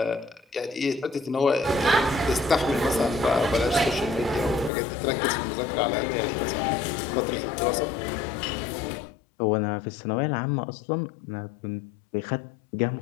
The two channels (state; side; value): drops out; right; at 4.7 s